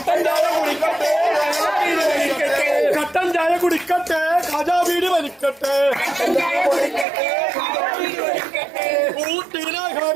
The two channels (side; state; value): left; drops out; at 7.1 s